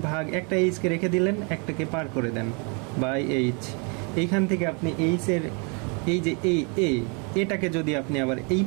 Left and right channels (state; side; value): quieter; left; 34.5 dB